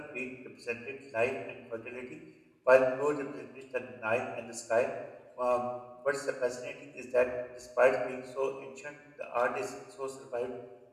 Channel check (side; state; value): both; identical; correlation 1.00